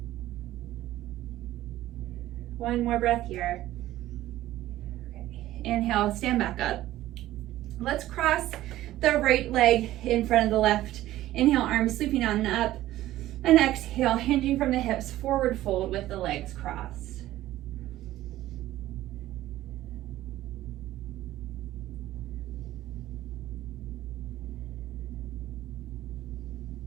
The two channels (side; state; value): left; quieter; 14.9 dB